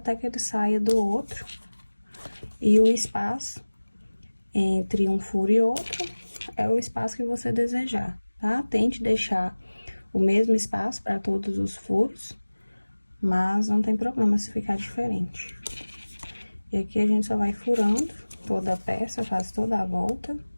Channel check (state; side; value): inverted; both; correlation -1.00